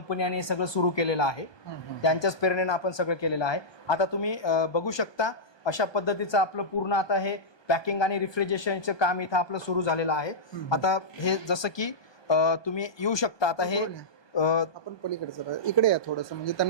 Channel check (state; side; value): late; right; 1.2 ms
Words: आणि हे सगळं सुरू केलेलं आहे. त्यांच्याच प्रेरणेनं आपण सगळं केलेलं आहे. आता तुम्ही बघू शकता अशा पद्धतीचं आपलं पूर्ण आता हे पॅकिंग आणि रिफ्रिजरेशनचं काम इथं आपलं सुरू झालेलं आहे. आता हे जसं की तुम्ही येऊ शकता. आता हे आपण पलीकडचं इकडे या थोडंसं, म्हणजे